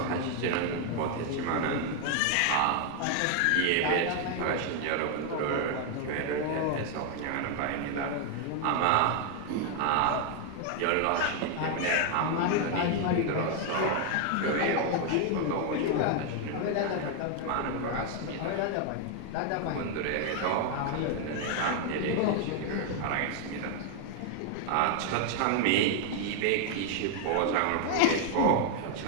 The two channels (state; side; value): different; both; correlation 0.00